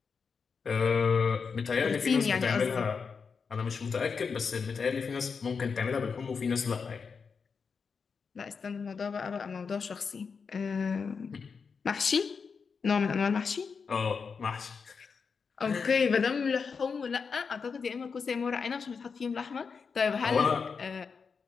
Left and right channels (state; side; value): quieter; right; 5.5 dB